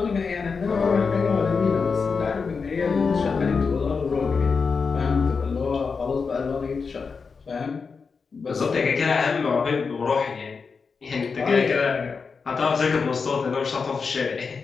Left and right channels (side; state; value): right; quieter; 5.1 dB